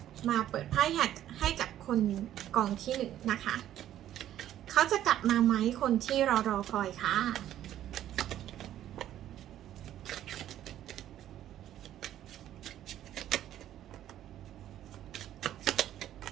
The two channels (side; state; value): left; quieter; 12.0 dB